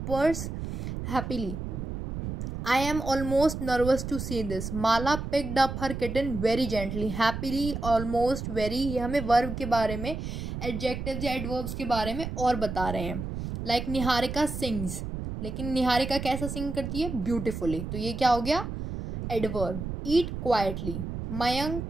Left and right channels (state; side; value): noise; right; rumble, 6 dB below the sound